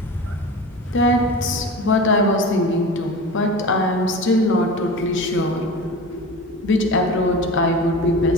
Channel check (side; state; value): both; normal; correlation 0.32